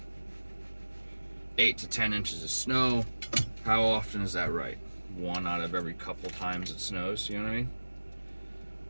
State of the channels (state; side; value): inverted; both; correlation -1.00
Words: 8 to 10 inches of snow. How often is that right? One out of every couple times it snows, you know what I mean?